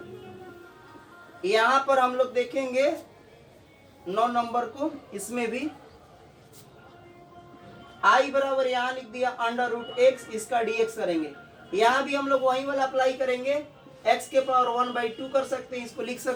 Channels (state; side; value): identical; both; correlation 1.00